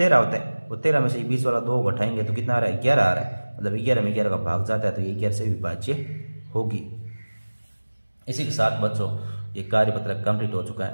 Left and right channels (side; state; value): both; inverted; correlation -1.00